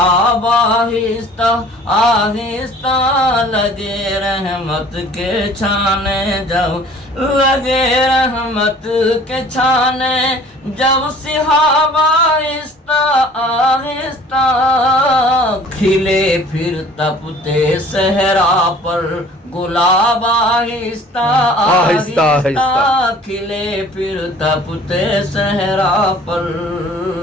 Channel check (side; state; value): both; normal; correlation 0.50